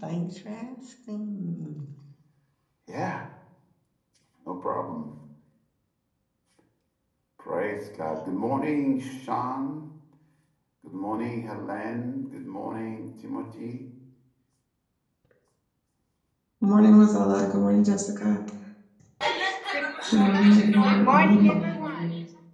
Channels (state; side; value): identical; both; correlation 1.00